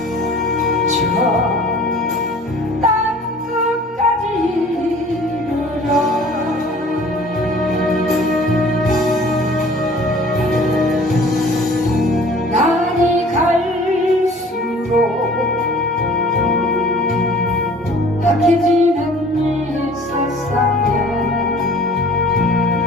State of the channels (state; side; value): normal; both; correlation 0.49